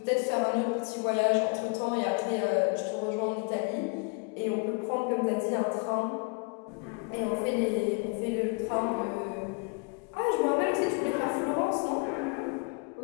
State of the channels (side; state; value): right; quieter; 34.2 dB